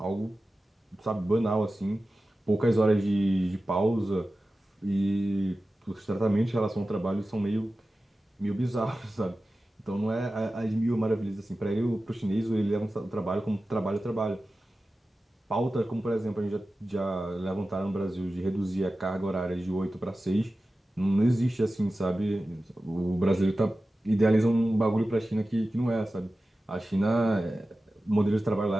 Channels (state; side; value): normal; both; correlation 0.95